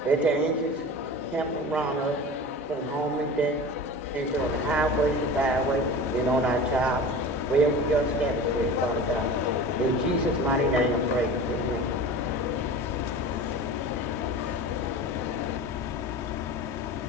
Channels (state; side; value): normal; both; correlation 0.34